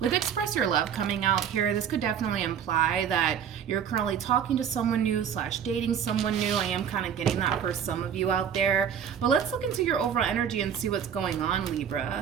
Express Your Love coming out here, this could definitely imply that you're currently talking to someone new / dating someone new. I am kind of getting that for some of you out there. But let's look into your overall energy and see what's going on,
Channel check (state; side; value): quieter; left; 8.2 dB